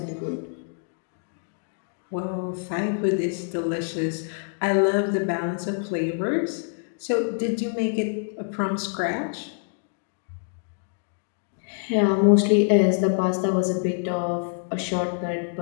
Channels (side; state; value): right; silent; digital silence